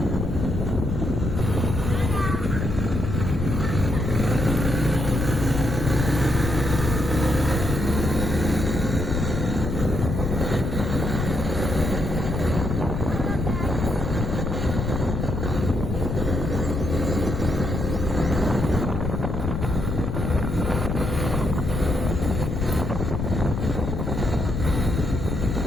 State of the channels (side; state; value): left; noise; rumble, 2 dB below the sound